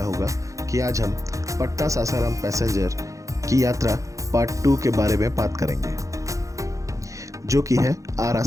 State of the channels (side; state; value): left; late; 0.15 ms